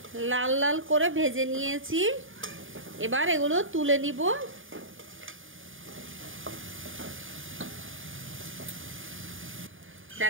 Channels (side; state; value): left; late; 0.58 ms